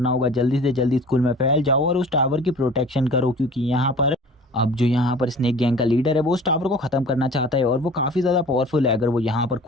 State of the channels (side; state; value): both; normal; correlation 0.44